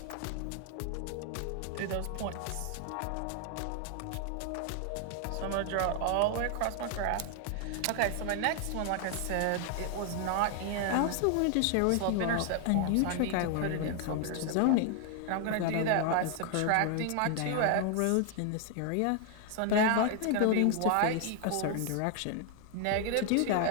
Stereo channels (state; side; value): different; both; correlation 0.00